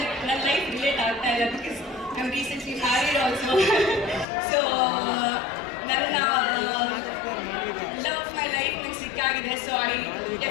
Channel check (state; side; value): drops out; right; at 4.2 s